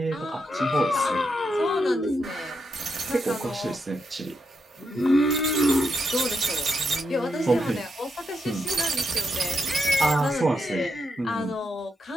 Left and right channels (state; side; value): normal; both; correlation 0.83